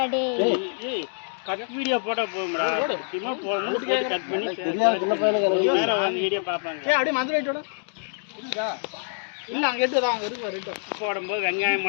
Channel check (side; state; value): right; silent; digital silence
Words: டேய். கட் வீடியோ போட்டா போடும்டா. சும்மா போட்டு கட் பண்ணி தெரியாத சின்ன பையனுக்கு வேற வந்து வீடியோ பாப்பாங்க. அப்படியே மதுரை ரைட்டோட இருக்கா இல்ல அங்க எடுத்துதான் அங்க இருக்கு ரைட்டோ போடும்போது வெங்காயம்